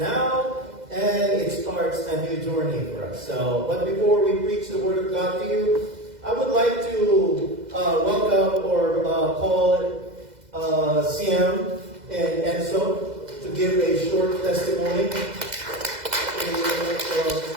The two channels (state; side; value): late; left; 2.0 ms